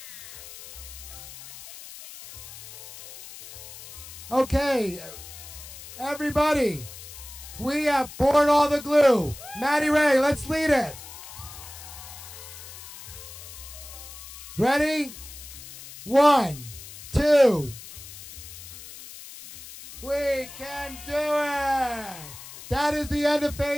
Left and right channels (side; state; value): left; noise; hiss, 14 dB below the sound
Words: Okay, everybody, we have poured all the glue. Maddy Rae, let's lead it. Ready? 1, 2. We can do it. That is the end of